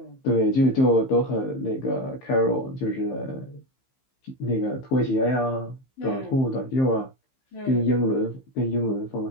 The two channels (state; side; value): late; right; 15 ms